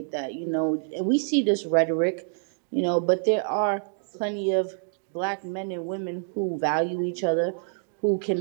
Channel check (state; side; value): silent; left; 60 dB below the other